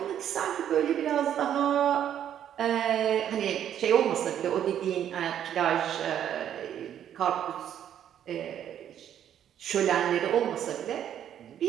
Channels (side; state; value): left; quieter; 10.0 dB